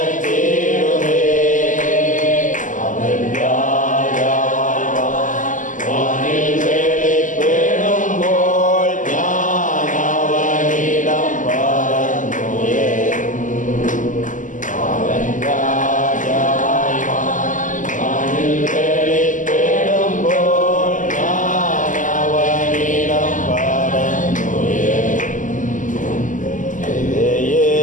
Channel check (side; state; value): right; late; 0.37 ms